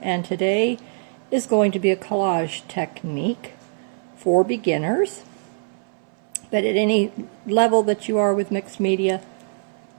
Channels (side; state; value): left; silent; 61 dB below the other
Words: and today is going to be a collage technique for beginners. But at any level that you are with mixed media,